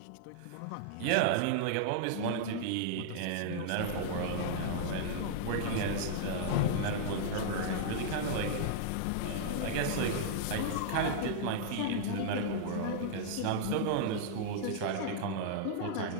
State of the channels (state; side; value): different; both; correlation -0.01